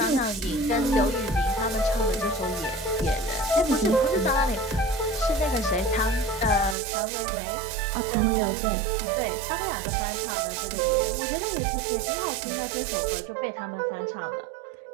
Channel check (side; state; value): left; drops out; at 6.8 s